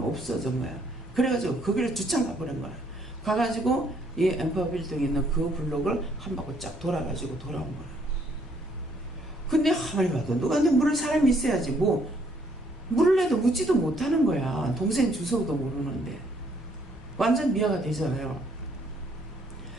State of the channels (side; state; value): both; normal; correlation 0.67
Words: 없어진 거야. 그래가지고 거기를 주차장 가버린 거야. 가가지고 이 엠파워 빌딩에 있는 그 블록을 한 바퀴 쫙 돌아가지고 돌아온 거야. 근데 가만히 봐도 누가 내 물을 사람이 있어야지 뭐 물을 내도 묻지도 못하는 거야. 동생 주소도 모르는데. 완전 미아가 되잖아요.